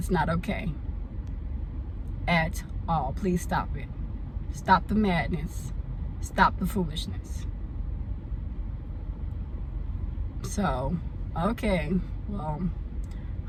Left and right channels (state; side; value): identical; both; correlation 1.00